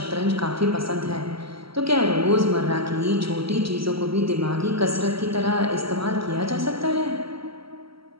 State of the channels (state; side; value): late; left; 0.75 ms